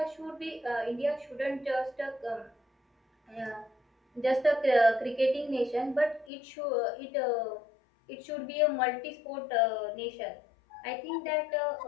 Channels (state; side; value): drops out; right; at 6.3 s